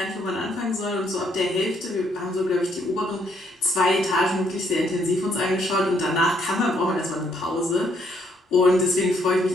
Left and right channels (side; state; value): both; normal; correlation 0.71